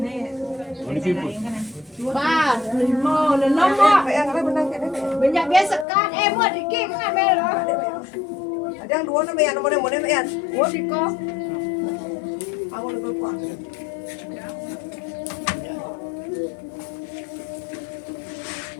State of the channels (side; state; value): right; drops out; at 5.9 s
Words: Ba, lima, enam mak. Banyak biasa kan, buat dikit kan melo. Ada yang dua nama yang nomor yang Oh diko. aku lebih kuat.